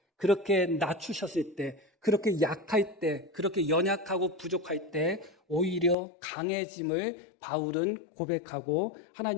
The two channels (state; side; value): drops out; right; at 6.0 s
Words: 그렇게 낮추셨을 때, 그렇게 약할 때, 그렇게 연약하고 부족할 때 오히려 강해짐을 바울은 고백하고